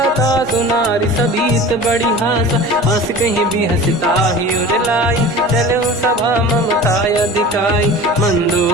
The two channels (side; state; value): both; normal; correlation 0.38